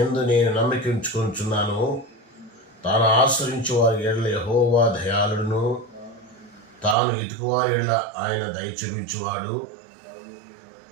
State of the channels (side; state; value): left; drops out; at 7.0 s